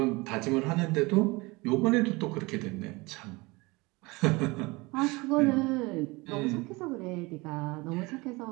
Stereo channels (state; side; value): quieter; left; 24.1 dB